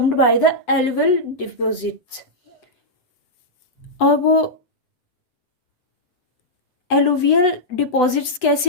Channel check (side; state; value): right; late; 7.9 ms